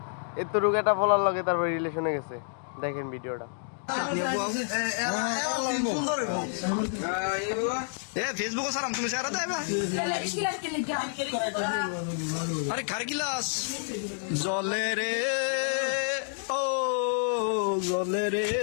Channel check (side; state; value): right; silent; digital silence